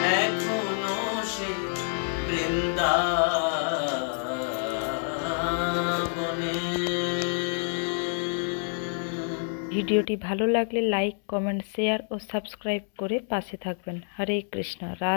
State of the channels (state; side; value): silent; right; 60 dB below the other